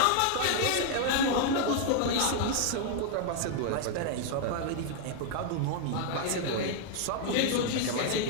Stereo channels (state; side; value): different; both; correlation 0.00